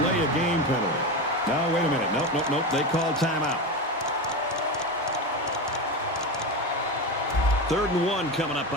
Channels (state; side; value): normal; both; correlation 0.20